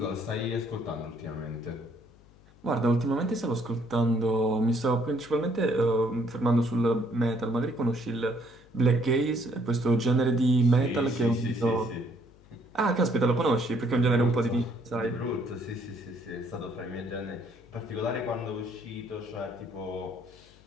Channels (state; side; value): noise; left; hum, 26 dB below the sound